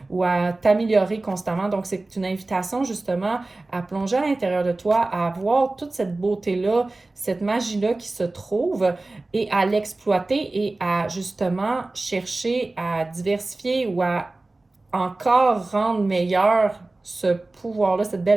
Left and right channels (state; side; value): quieter; left; 3.1 dB